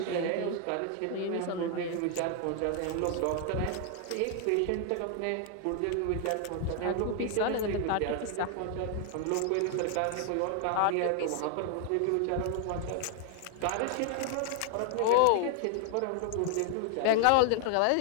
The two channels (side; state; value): both; different; correlation 0.00